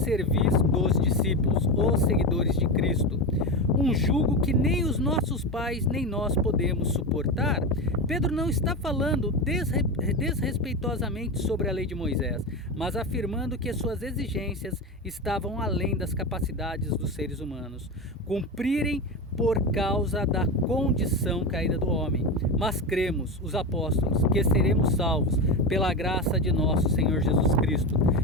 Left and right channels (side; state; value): both; normal; correlation 0.19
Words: dos discípulos, os seguidores de Cristo, um jugo que nem os nossos pais nem nós podemos suportar. Pedro não está falando desrespeitosamente sobre a lei de Moisés, mas afirmando que suas exigências estavam além das capacidades dos seres humanos cumprirem por causa da condição caída do homem. Mas cremos, os apóstolos, que seremos salvos pela graça de nosso Senhor Jesus Cristo,